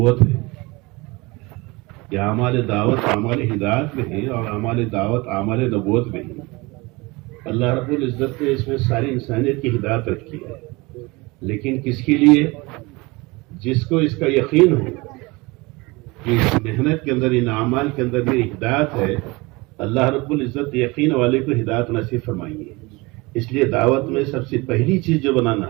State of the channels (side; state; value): left; quieter; 24.2 dB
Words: ہے۔ یہ اعمال دعوت اعمال ہدایت میں ہیں اور اعمال دعوت اعمال نبوت میں ہیں۔ اللہ رب العزت نے اس میں ساری انسانیت کی ہدایت رکھی ہے، لیکن کس کے لیے؟ جس کو اس کا یقین ہو کہ اس محنت کے اندر، ان اعمال کے اندر میری ہدایت ہے، اللہ رب العزت یقین والے کو ہدایت نصیب فرمائیں گے۔ اس لیے دعوت میں سب سے پہلی چیز جو